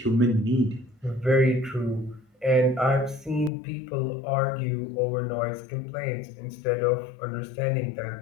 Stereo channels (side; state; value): right; drops out; at 3.5 s